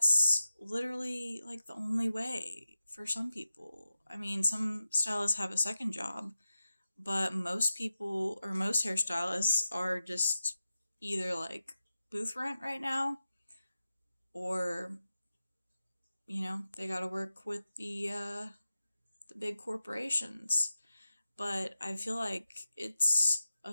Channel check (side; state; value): both; inverted; correlation -0.93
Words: literally like the only way for some people. I mean, some stylists have a second job, but most people or most hairstylists are just either like booth rent right now, or they got to work with the big corporations. But I feel like it's